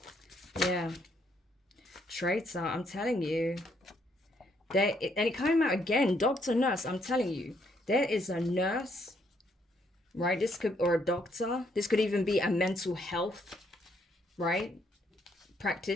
Yeah. Traitor, I'm telling you. And it came out again. Doctor, nurse, I'm telling you. There is a nurse, right? This could, or a doctor. This could even be a mental health, right?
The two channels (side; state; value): both; normal; correlation 0.71